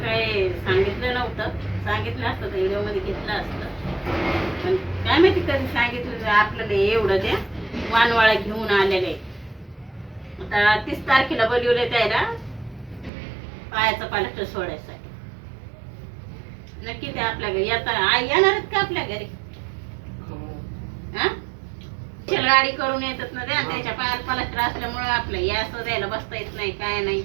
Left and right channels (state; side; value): drops out; left; at 13.1 s